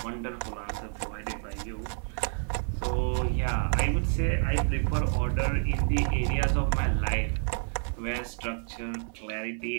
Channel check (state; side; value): silent; left; 55 dB below the other